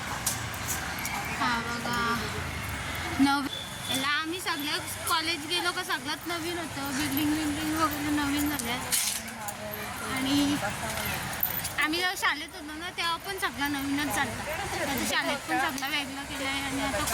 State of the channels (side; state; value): both; identical; correlation 1.00